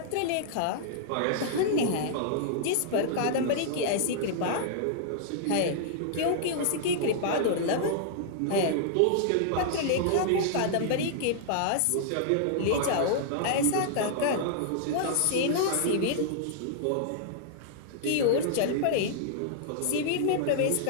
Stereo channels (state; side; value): different; both; correlation -0.01